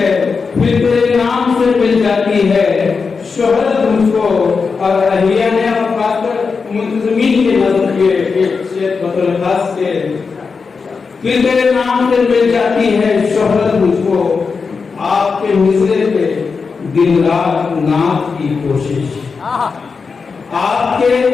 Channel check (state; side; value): quieter; right; 5.0 dB